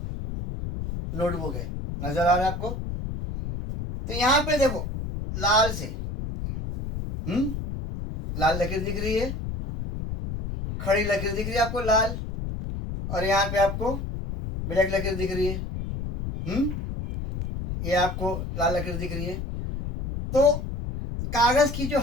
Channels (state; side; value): noise; left; rumble, 5 dB below the sound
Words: नोटबुक है, नजर आ रहा है आपको? तो यहाँ पे देखो लाल से लाल लकीर दिख रही है, खड़ी लकीर दिख रही है आपको लाल, और यहाँ पे आपको ब्लैक लकीर दिख रही है। ये आपको लाल लकीर दिख रही है। तो कागज की जो